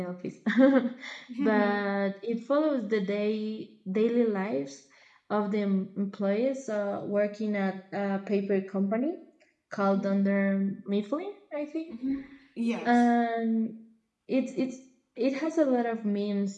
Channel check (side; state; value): both; identical; correlation 1.00